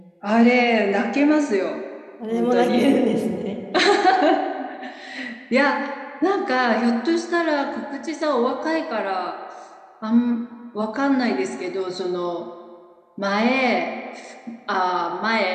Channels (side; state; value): both; identical; correlation 1.00